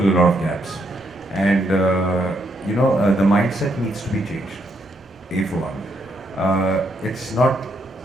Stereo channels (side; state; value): both; normal; correlation 0.76